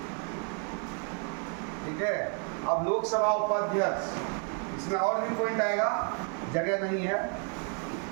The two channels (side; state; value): left; quieter; 39.0 dB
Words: ठीक है, अब लोकसभा उपाध्यक्ष, इसमें और भी पॉइंट आएगा, जगह नहीं है।